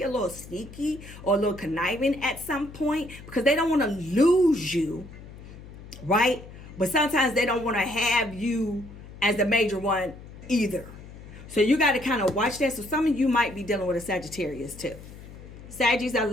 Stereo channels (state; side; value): noise; left; hum, 16 dB below the sound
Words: a little sneaky or a little conniving at some point because they don't want to lose you, right? But sometimes they don't want to have you as the major one either. So you got to kind of watch that. So some of you might be dealing with a Sagittarius too. Saggies, I